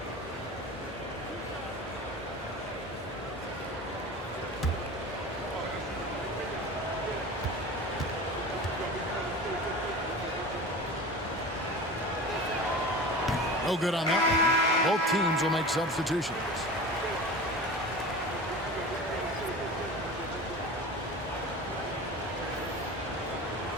No good on that. Both teams will make substitutions.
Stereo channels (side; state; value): both; normal; correlation 0.34